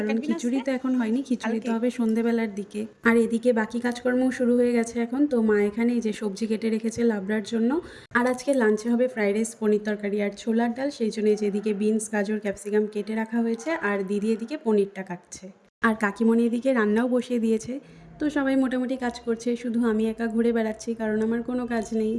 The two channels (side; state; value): both; identical; correlation 1.00